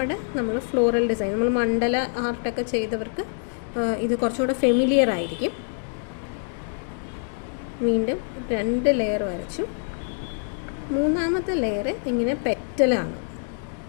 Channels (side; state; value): right; silent; digital silence